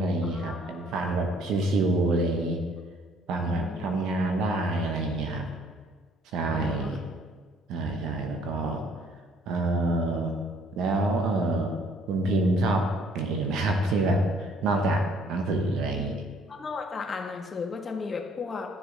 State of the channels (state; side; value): normal; both; correlation 0.60